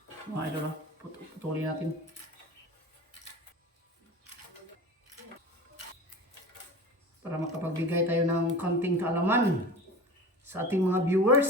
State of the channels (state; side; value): normal; both; correlation 0.34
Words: mga idol, putulin natin para makapagbigay tayo ng konting kaalaman sa ating mga